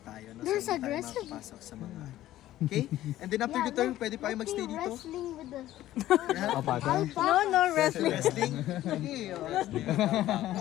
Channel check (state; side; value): quieter; right; 14.1 dB